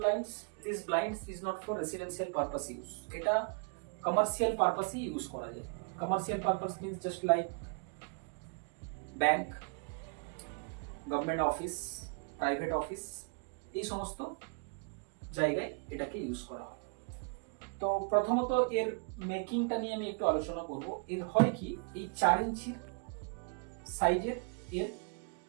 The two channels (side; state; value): left; quieter; 36.6 dB